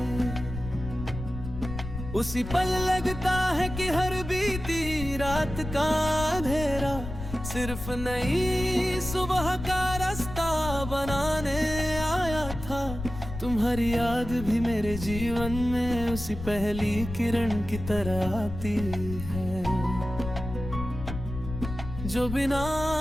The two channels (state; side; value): noise; left; rumble, 9 dB below the sound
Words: उसी पल लगता है कि हर बीती रात का अंधेरा सिर्फ नई सुबह का रास्ता बनाने आया था। तुम्हारी याद भी मेरे जीवन में उसी पहली किरण की तरह आती है, जो बिना